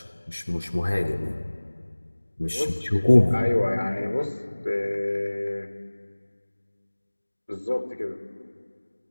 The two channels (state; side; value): inverted; both; correlation -1.00